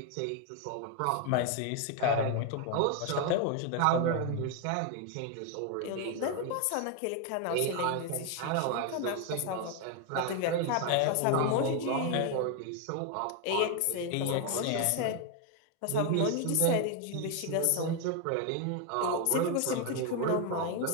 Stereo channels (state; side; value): different; both; correlation 0.01